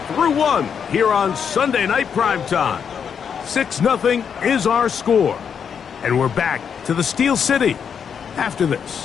through one here on Sunday Night Primetime. 6-0 is our score. And we're back to the Steel City after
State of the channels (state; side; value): quieter; right; 7.2 dB